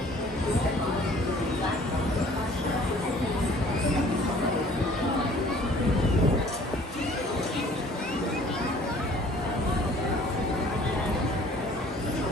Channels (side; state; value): both; normal; correlation 0.53